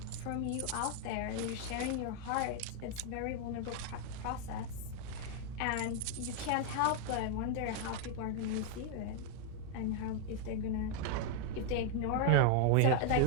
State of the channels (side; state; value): both; different; correlation 0.00